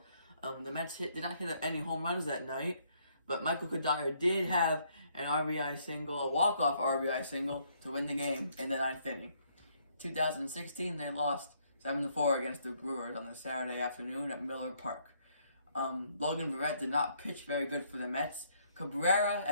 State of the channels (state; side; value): inverted; both; correlation -0.69